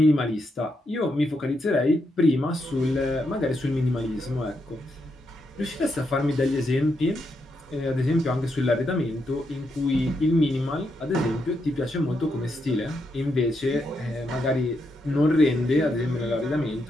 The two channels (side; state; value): both; normal; correlation 0.81